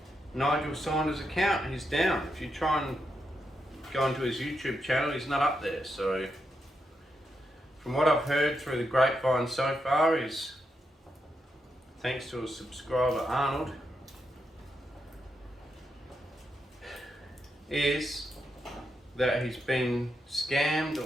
Nigel Saunders' account. He's down. If you try and go into his YouTube channel, he's not up there. So from what I've heard through the grapevine so far is, thanks to a subscriber Arnold, is that he's been scammed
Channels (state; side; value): normal; both; correlation 0.83